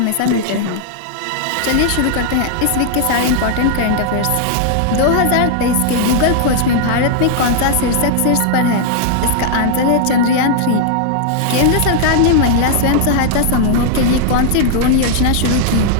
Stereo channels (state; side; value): different; both; correlation -0.01